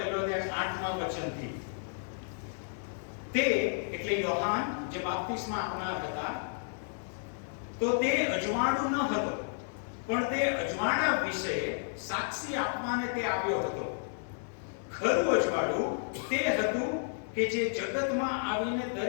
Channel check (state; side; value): silent; right; digital silence